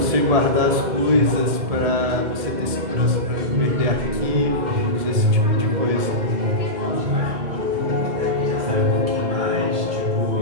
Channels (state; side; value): late; left; 1.8 ms